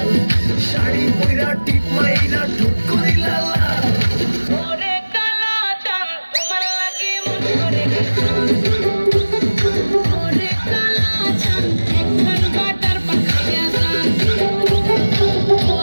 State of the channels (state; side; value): inverted; both; correlation -1.00